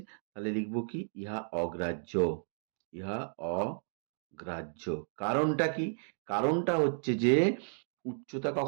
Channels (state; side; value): silent; left; digital silence